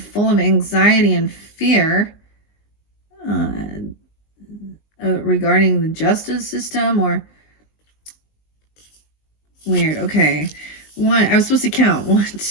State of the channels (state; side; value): late; right; 19 ms